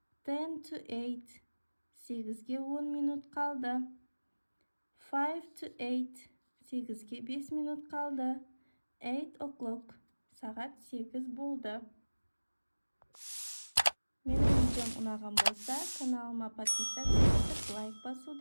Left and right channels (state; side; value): inverted; both; correlation -1.00